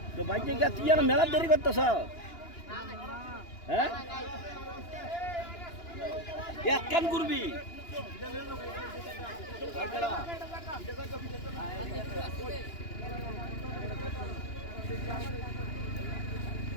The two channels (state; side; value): late; right; 2.9 ms